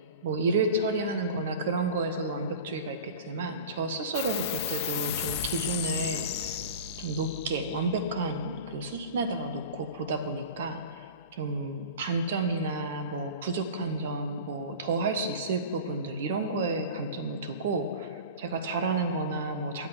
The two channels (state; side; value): inverted; both; correlation -0.34